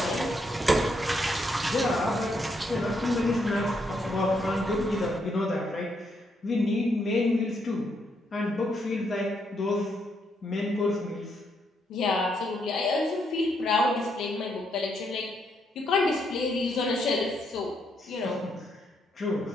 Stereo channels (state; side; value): normal; both; correlation 0.76